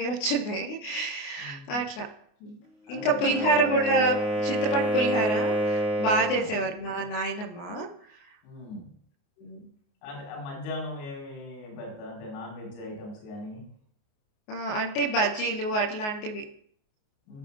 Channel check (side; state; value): right; late; 29 ms